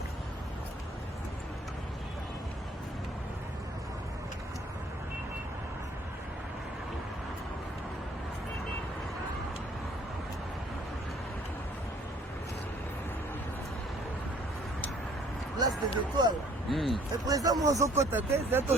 Place des étoiles. Le président Monzo Kota, c'est un peu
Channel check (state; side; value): normal; both; correlation 0.58